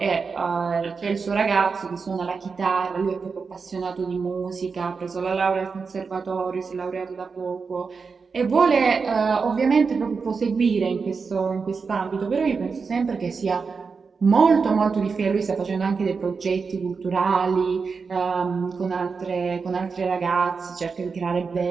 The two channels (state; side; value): quieter; left; 5.1 dB